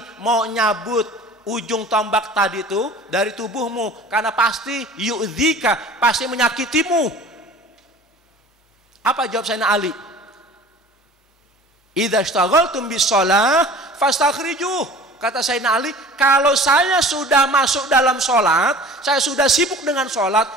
mau nyabut ujung tombak tadi itu dari tubuhmu, karena pasti yu'dzika, pasti menyakitimu. Apa jawab Sayyidina Ali? Idza ishtaghaltum bis shalah fastakhrijuh. Kata Sayyidina Ali, kalau saya sudah masuk dalam sholat, saya sudah sibuk dengan sholat,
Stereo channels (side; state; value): both; normal; correlation 0.43